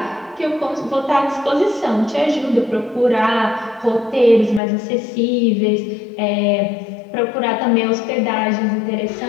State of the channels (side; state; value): right; drops out; at 4.6 s